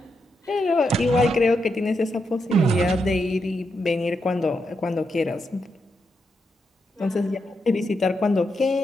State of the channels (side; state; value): both; normal; correlation 0.83